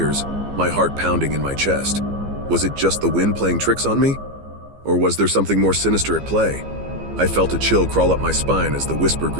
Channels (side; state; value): left; late; 15 ms